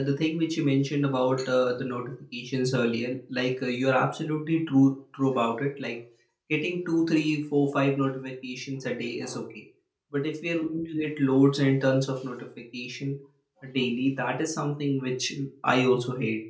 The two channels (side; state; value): both; identical; correlation 1.00